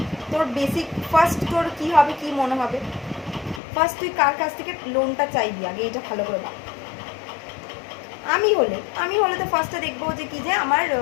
তোর বেসিক ফার্স্ট তোর কী হবে, কী মনে হবে? ফার্স্ট তুই কার কাছ থেকে লোনটা চাইবি আগে, এটা ভালো করে ভাব। আমি হলে তো ফার্স্টে দেখবো যে কি যে আমার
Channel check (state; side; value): drops out; right; at 3.6 s